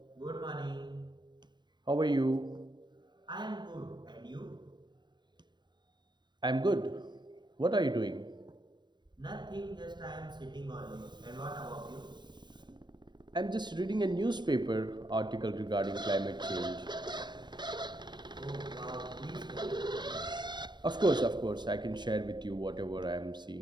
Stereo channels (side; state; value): left; late; 0.21 ms